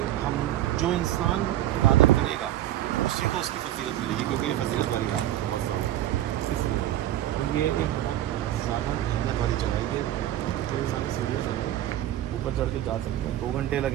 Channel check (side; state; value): left; quieter; 13.2 dB